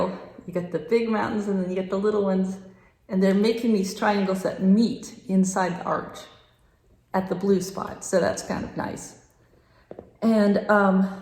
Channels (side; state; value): both; identical; correlation 1.00